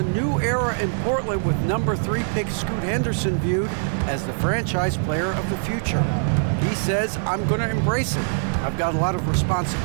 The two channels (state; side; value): silent; left; 63 dB below the other